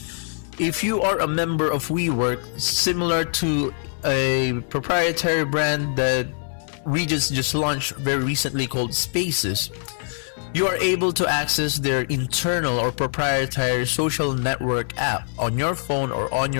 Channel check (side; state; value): right; silent; digital silence